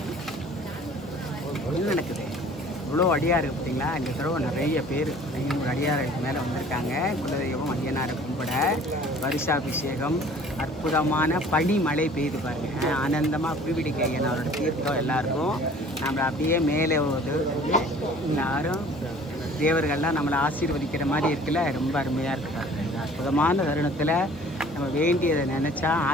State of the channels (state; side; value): normal; both; correlation 0.50